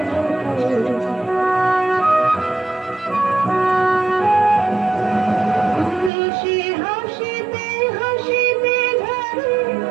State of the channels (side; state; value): left; drops out; at 6.1 s